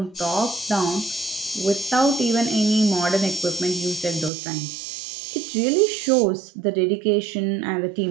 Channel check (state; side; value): drops out; left; at 4.3 s